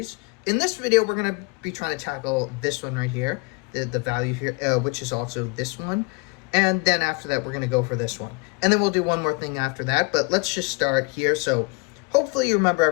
In this video, we're going to be trying to tackle this one right here, the value here, which is also this one. And then after that, we're going to go for this one. And then we'll do one more thing after that, but let's just start here. So hopefully you remember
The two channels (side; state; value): right; quieter; 29.2 dB